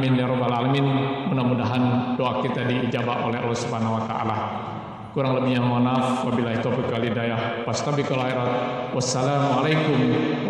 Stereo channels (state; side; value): identical; both; correlation 1.00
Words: ya rabbal alamin. Mudah-mudahan doa kita diijabah oleh Allah Subhanahu wa taala. Kurang lebihnya mohon maaf. Wabillahi taufiq wal hidayah. Fastabiqul khairat. Wassalamualaikum